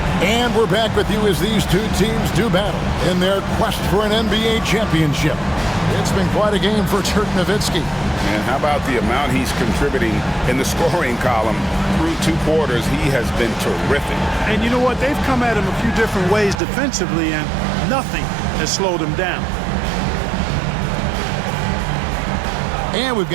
And we're back with you as these two teams do battle in their quest for an NBA championship. It's been quite a game for Dirk Nowitzki. And how about the amount he's contributing in the scoring column through 2 quarters? He has been terrific. And you know what? They've come at him a few different ways defensively, and nothing has slowed him down. And we've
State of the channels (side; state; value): left; drops out; at 16.6 s